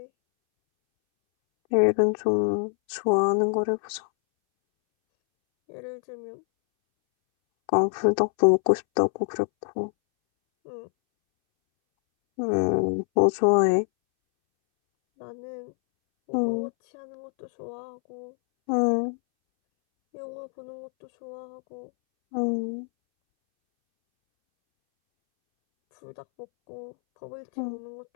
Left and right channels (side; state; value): right; silent; 61 dB below the other